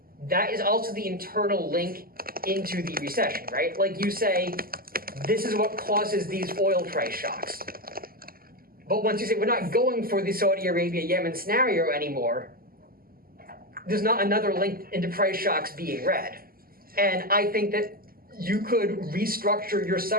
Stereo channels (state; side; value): late; left; 0.42 ms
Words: that is also the internal link into the recession, right? Like you say, this is what causes these oil price shocks. But once you say we're not going for the Saudi Arabia-Yemen scenario anymore, there's not another link into price shocks being read. And I think that you could restructure your